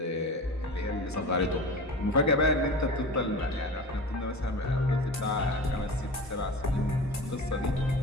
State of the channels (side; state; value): both; normal; correlation 0.33